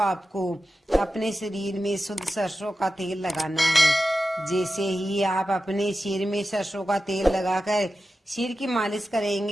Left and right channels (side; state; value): both; normal; correlation 0.92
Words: अपने शरीर में शुद्ध सरसों का तेल लगाना है। जैसे ही आप अपने सिर में सरसों का तेल लगाकर सिर की मालिश